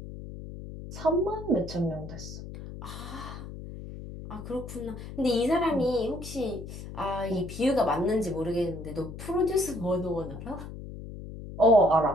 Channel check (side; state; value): left; noise; hum, 11 dB below the sound